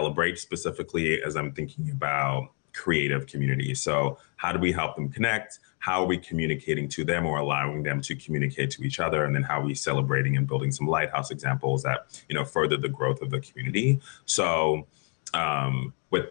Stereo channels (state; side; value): quieter; right; 39.0 dB